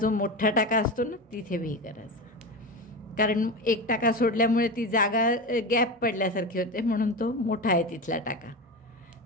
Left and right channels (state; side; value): normal; both; correlation 0.23